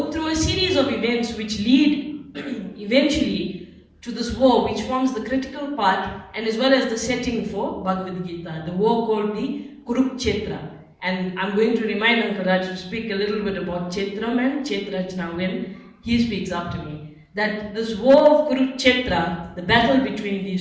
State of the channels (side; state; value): both; identical; correlation 1.00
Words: through a series of events which lead eventually to this war, which forms the critical part and as well as the setting for Bhagavad Gita, the war called the Kurukshetra. And I'm going to remind Uncle Raj to speak a little bit about Kshetram and Kshetrajna when he speaks after me. That this war of Kurukshetra, the battle between